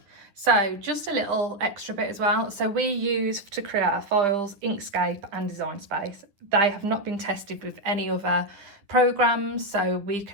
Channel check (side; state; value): left; late; 10 ms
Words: so just a little extra bit as well. So we use to create our files Inkscape and Design Space. They have not been tested with any other programs, so we